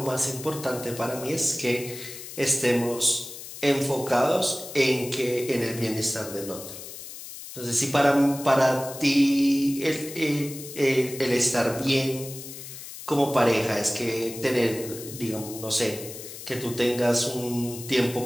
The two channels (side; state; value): left; noise; hiss, 12 dB below the sound